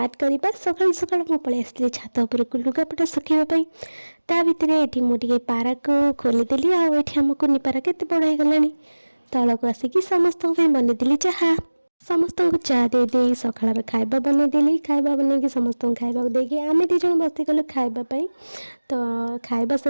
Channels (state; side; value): inverted; both; correlation -1.00